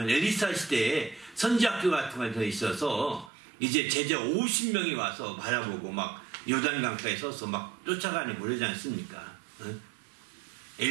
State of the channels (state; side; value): drops out; left; at 3.3 s